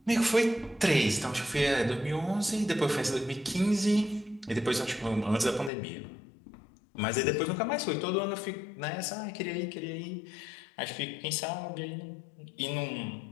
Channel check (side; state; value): right; drops out; at 5.7 s